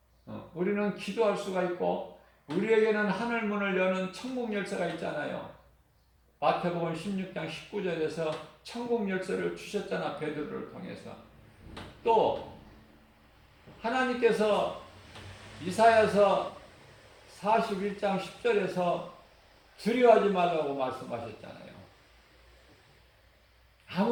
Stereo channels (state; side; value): identical; both; correlation 1.00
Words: 우리는 기도할 수가 있고 우리에게는 하늘 문을 여는 천국 열쇠가 있잖아요. 마태복음 16장 19절에서 천국 열쇠를 주셨잖아, 베드로를 통해서. 또 하나님께서 이사야서 41장 10절에서 두려워하지 말라고 말씀하셨잖아요.